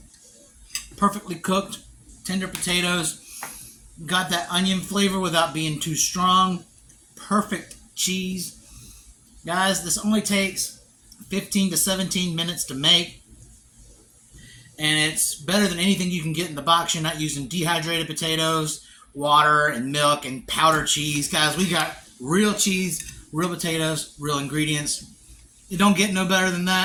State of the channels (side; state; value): both; identical; correlation 1.00